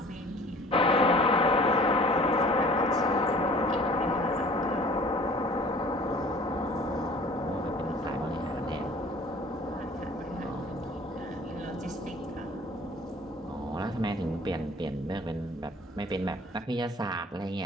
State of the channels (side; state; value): both; normal; correlation 0.48